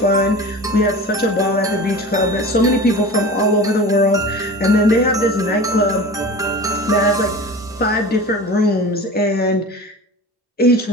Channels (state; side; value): normal; both; correlation 0.35